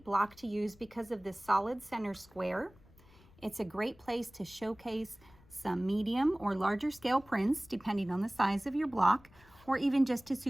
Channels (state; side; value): noise; left; rumble, 26 dB below the sound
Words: block to use because of this solid center square. It's a great place to showcase some medium or larger scale prints depending on the size of your block, or even just